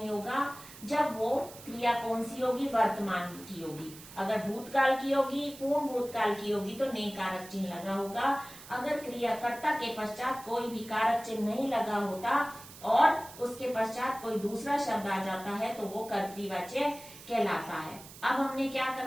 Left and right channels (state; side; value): noise; right; hiss, 17 dB below the sound